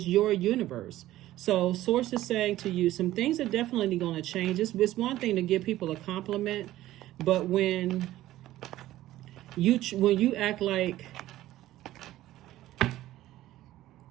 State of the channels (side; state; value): left; quieter; 14.9 dB